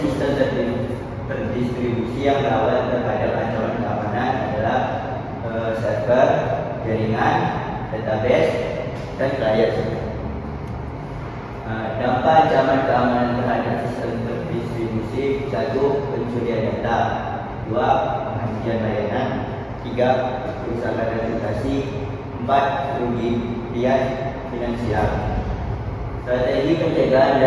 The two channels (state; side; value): identical; both; correlation 1.00